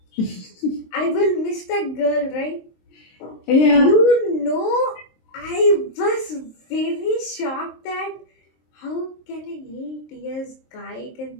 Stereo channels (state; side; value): late; right; 23 ms